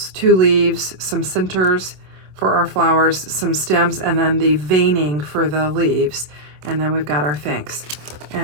2 leaves, some centers for our flowers, some stems, and then the veining for the leaves. And then we've got our thanks.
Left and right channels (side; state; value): left; late; 27 ms